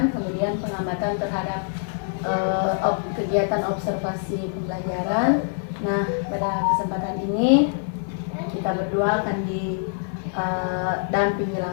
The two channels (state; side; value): silent; right; 62 dB below the other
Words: kemudian pengamatan terhadap kegiatan observasi pembelajaran. Nah, pada kesempatan ini kita berdua akan didampingi